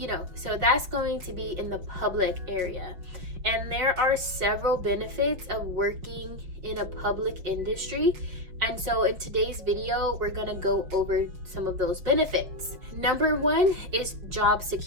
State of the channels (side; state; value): left; late; 5.6 ms